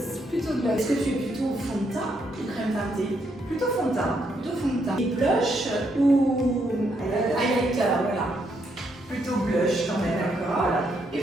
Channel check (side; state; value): both; normal; correlation 0.76